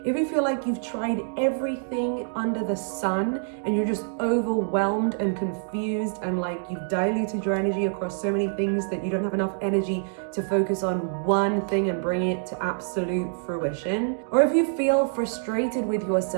if you feel like you've tried everything under the sun and you're just overwhelmed and confused and like you've diluted your energy across so many things that you don't have enough energy to focus on one thing and bring it to absolute fruition, or if you feel frustrated with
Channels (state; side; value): silent; left; digital silence